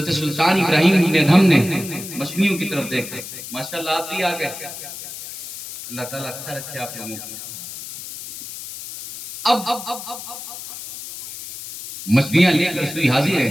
سلطان ابراہیم ابن ادھم نے مچھلیوں کی طرف دیکھا، ماشاءاللہ آپ بھی آ گئے، اللہ تعالیٰ اچھا رکھے آپ لوگوں کو۔ اب مچھلیاں لے کر سوئی حاضر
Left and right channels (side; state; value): left; noise; hiss, 11 dB below the sound